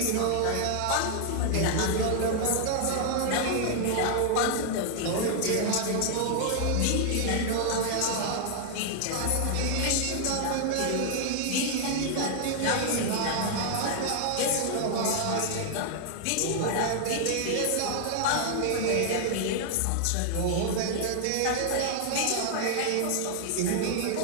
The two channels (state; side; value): different; both; correlation 0.00